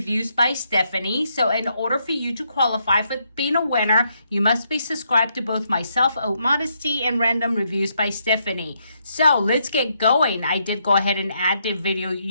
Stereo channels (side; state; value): both; inverted; correlation -0.77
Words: by Stephanie. So in order for you to qualify for being a winner, you must be subscribed to both myself, Modesty, and Random Reviews by Stephanie. So let's get going. I did go ahead and add the video